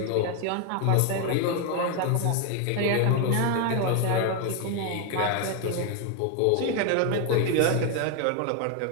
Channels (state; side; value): different; both; correlation 0.01